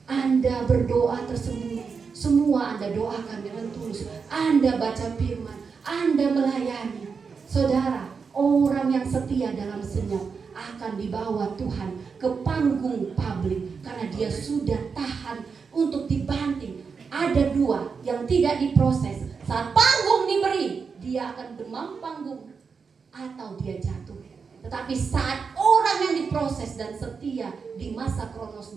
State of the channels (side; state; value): left; quieter; 5.5 dB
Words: Anda berdoa tersembunyi, semua Anda doakan dengan tulus, Anda baca firman, Anda melayani. Saudara, orang yang setia dalam senyap akan dibawa Tuhan ke panggung publik karena dia sudah tahan untuk dibanting. Ada dua yang tidak diproses. Saat panggung diberi, dia akan demam panggung atau dia jatuh. Tetapi saat orang yang diproses dan setia di masa